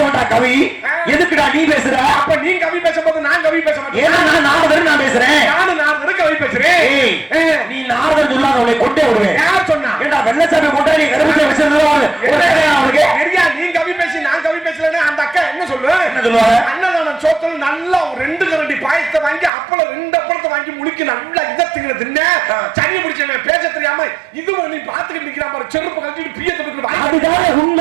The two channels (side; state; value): left; drops out; at 19.5 s